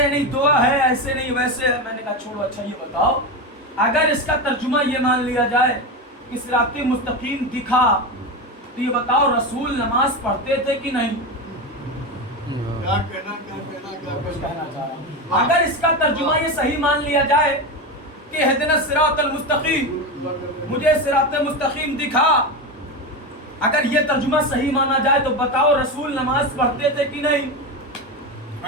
ہیں نہیں دعا ہے ایسے نہیں ویسے ہے. میں نے کہا چھوڑو، اچھا یہ بتاؤ، اگر اس کا ترجمہ یہ مان لیا جائے کہ صراط مستقیم دکھا، تو یہ بتاؤ رسول نماز پڑھتے تھے کہ نہیں؟ اگر اس کا ترجمہ یہ صحیح مان لیا جائے کہ اہدنا الصراط المستقیم، مجھے صراط مستقیم دکھا، اگر یہ ترجمہ صحیح مانا جائے تو بتاؤ رسول نماز پڑھتے تھے کہ نہیں؟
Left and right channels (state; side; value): normal; both; correlation 0.18